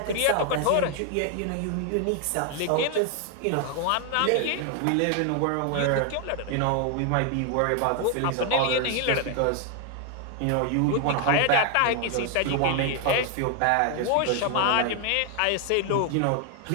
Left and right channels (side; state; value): both; different; correlation 0.00